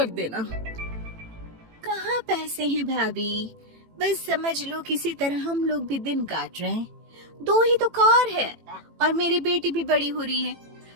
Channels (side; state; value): left; late; 18 ms